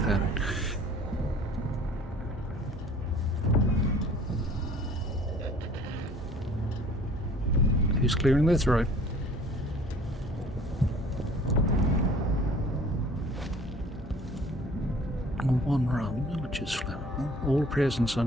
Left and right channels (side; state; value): both; normal; correlation 0.51